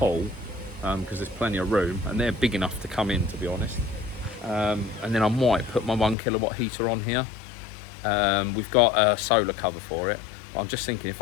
because there's plenty of room, and they're big enough to come in, to be honest. And then I might put my 1 kilowatt heater on here. We've got a solar cover for it. I'm just thinking if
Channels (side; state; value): right; drops out; at 6.2 s